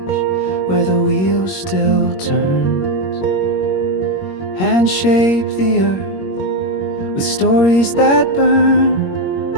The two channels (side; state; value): right; late; 21 ms